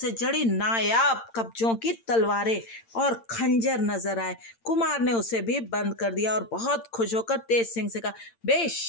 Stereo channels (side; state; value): right; late; 8.8 ms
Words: जड़ी नायाब कब्जों की तलवारें और खंजर नजर आए। कुमार ने उसे भी बंद कर दिया और बहुत खुश होकर तेज सिंह से कहा,